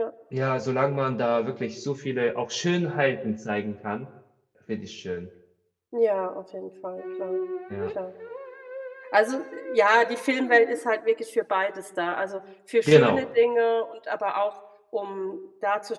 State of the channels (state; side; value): identical; both; correlation 1.00